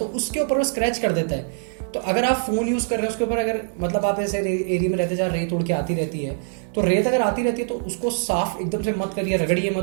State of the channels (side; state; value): left; silent; digital silence